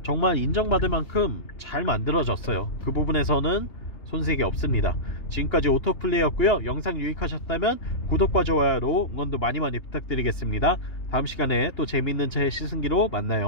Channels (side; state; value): right; late; 3.3 ms